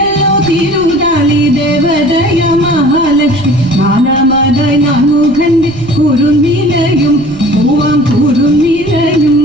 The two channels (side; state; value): right; noise; rumble, 19 dB below the sound